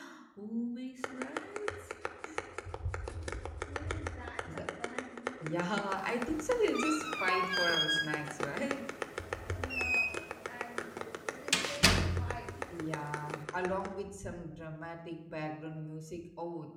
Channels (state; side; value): identical; both; correlation 1.00